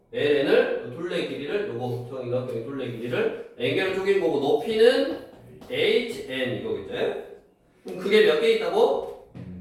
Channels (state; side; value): identical; both; correlation 1.00